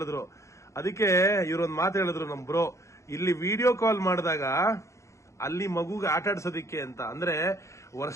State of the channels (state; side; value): late; right; 0.14 ms